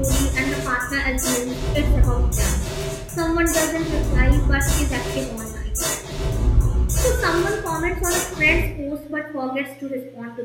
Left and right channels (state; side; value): identical; both; correlation 1.00